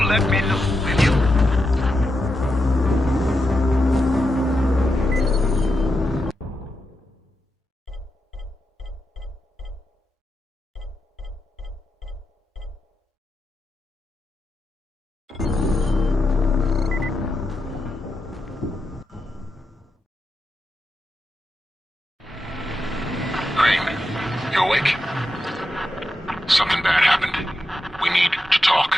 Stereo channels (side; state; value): both; normal; correlation 0.87